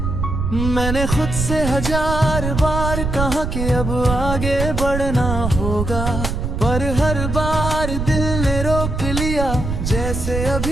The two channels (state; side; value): noise; right; rumble, 3 dB below the sound